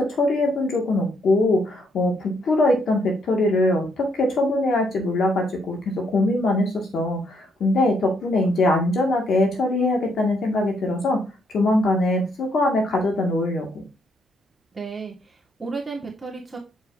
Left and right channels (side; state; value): both; normal; correlation 0.73